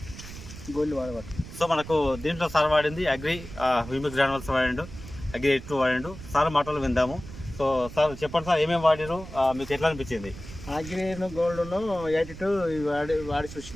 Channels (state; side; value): noise; right; rumble, 13 dB below the sound